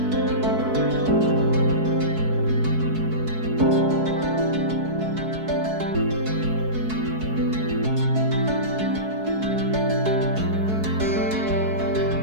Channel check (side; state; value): left; late; 4.6 ms